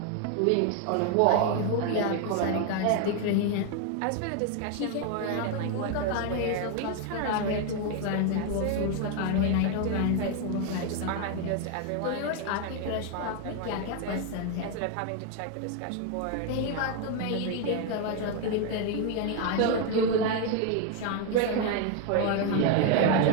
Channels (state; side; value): different; both; correlation 0.01